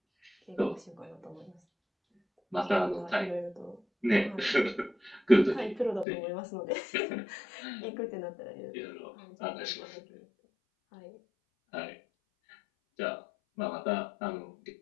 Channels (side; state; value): right; drops out; at 6.1 s